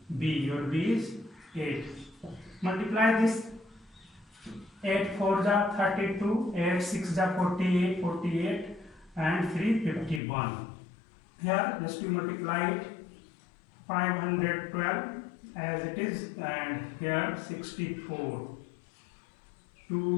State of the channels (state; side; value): drops out; right; at 10.2 s